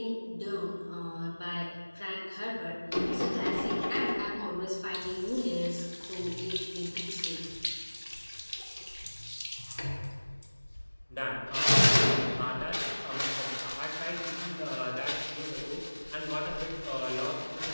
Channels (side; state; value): both; inverted; correlation -1.00